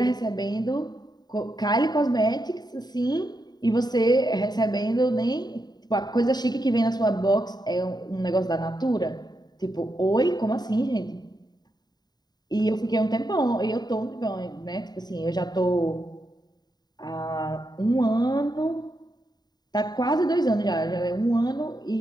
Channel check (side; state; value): right; late; 0.20 ms